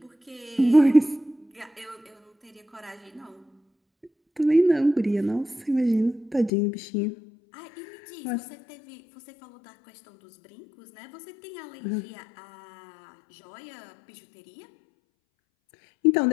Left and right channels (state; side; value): drops out; right; at 6.5 s